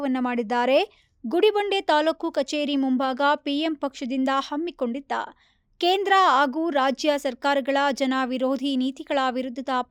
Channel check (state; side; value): identical; both; correlation 1.00